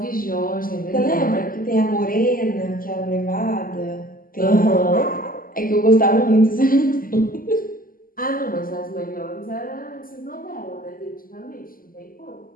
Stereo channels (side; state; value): right; late; 0.41 ms